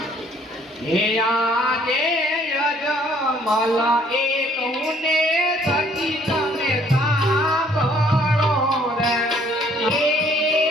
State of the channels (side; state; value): both; normal; correlation 0.61